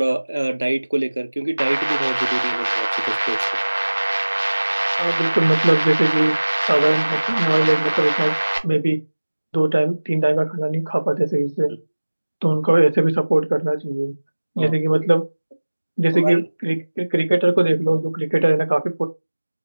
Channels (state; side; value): inverted; both; correlation -1.00